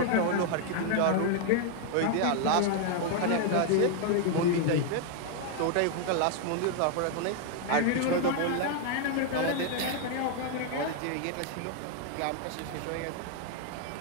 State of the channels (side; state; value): both; different; correlation 0.00